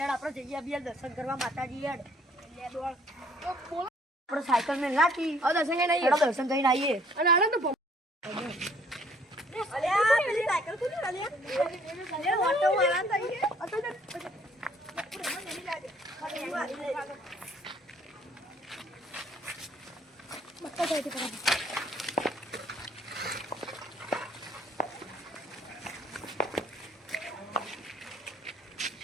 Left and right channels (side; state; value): both; normal; correlation 0.60